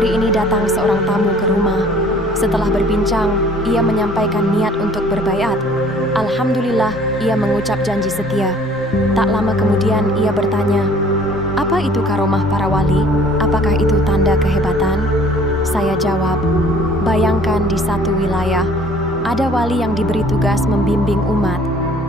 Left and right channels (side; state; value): both; normal; correlation 0.53